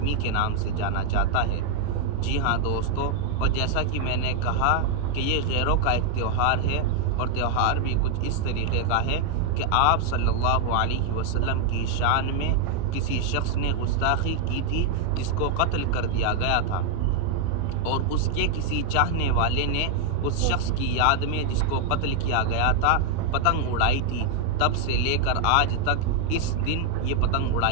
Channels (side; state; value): both; different; correlation 0.00